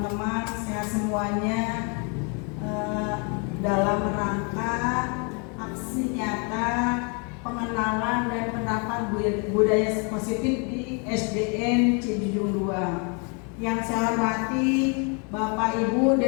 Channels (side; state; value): right; quieter; 35.7 dB